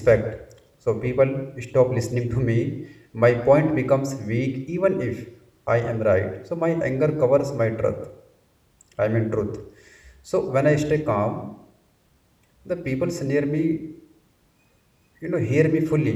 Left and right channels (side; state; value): both; identical; correlation 1.00